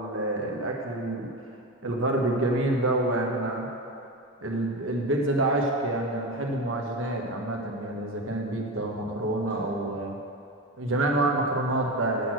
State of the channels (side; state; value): both; normal; correlation 0.22